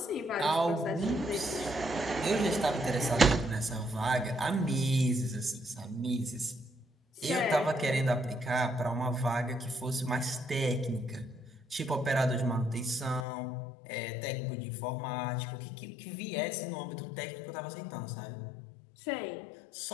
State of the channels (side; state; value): right; drops out; at 13.2 s